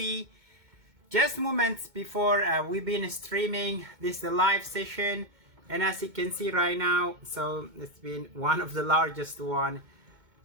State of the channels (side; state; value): left; late; 2.2 ms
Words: Just moments before we've been streaming this live session, and as you can see right now, so it's been one of the largest one.